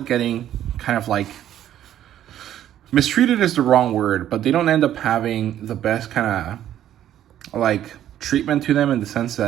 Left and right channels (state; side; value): quieter; left; 11.5 dB